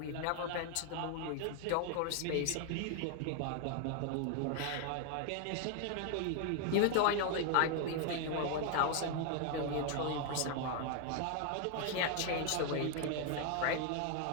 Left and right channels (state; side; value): different; both; correlation 0.00